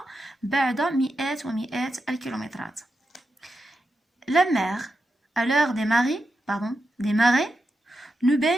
بعد مئات ومئات الكيلومترات. la mer à l'heure des marées nous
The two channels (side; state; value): both; normal; correlation 0.88